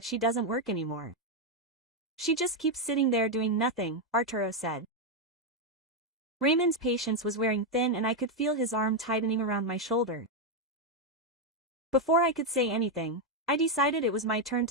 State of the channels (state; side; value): normal; both; correlation 0.03